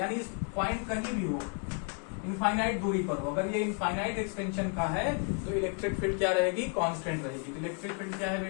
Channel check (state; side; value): quieter; right; 38.8 dB